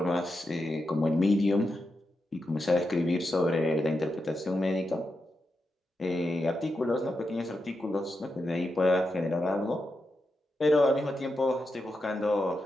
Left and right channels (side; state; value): both; normal; correlation 0.87